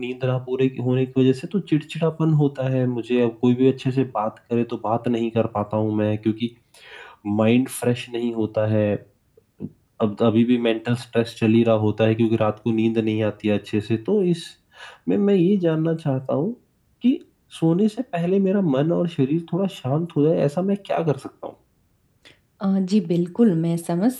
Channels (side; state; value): both; identical; correlation 1.00